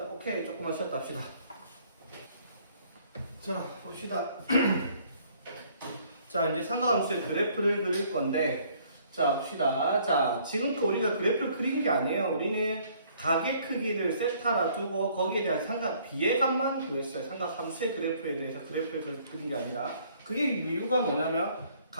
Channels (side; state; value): both; inverted; correlation -0.61